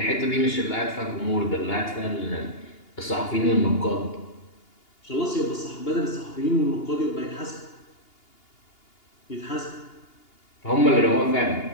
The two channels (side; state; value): right; late; 2.8 ms